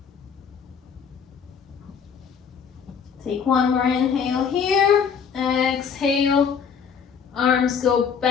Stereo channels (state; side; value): quieter; right; 6.7 dB